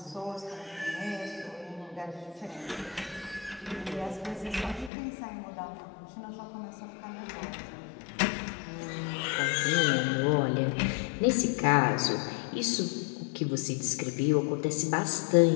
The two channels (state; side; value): drops out; right; at 4.9 s